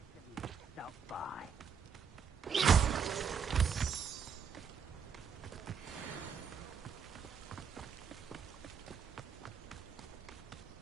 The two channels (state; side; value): quieter; left; 6.8 dB